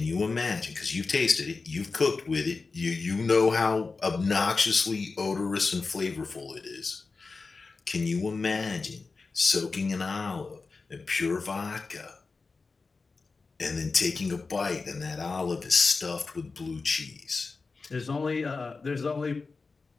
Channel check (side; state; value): right; quieter; 4.2 dB